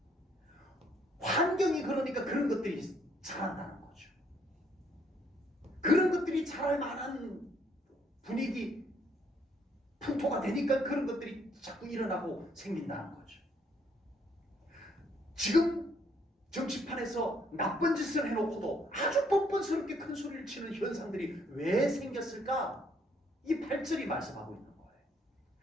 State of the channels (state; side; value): normal; both; correlation 0.68